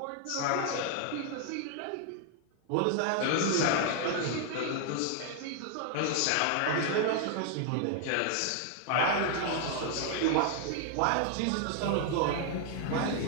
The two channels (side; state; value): both; different; correlation 0.00